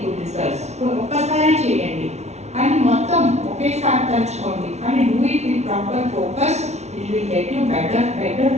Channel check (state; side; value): late; left; 0.32 ms